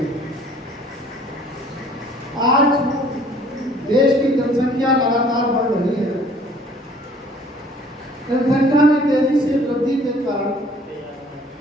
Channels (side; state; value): both; normal; correlation 0.55